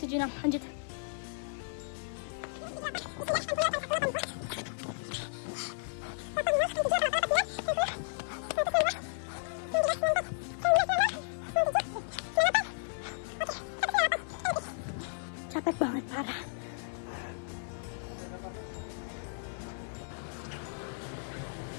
lanjut. Capek banget parah.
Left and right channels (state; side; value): silent; right; 55 dB below the other